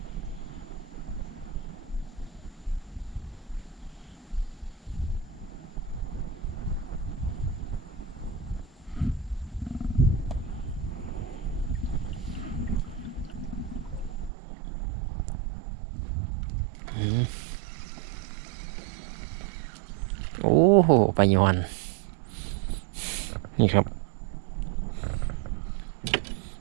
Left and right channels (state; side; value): drops out; left; at 14.3 s